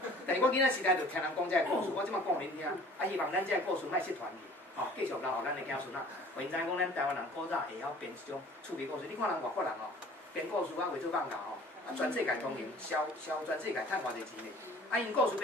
但是我囡仔时代就听人讲这个故事，我即马讲恁听。希望咱这个故事莫失传去，继续留互咱的子孙仔。互因知影讲咱台湾人古早会晓编一种趣味故事。你看人外国人哦，编故事啊，为做放假哦，全世界通行，销全世界趁偌济钱呢。因故事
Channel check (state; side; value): normal; both; correlation 0.49